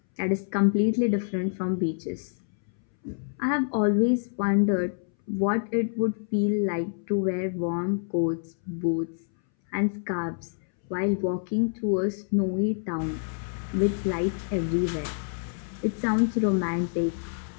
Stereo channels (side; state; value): right; silent; 60 dB below the other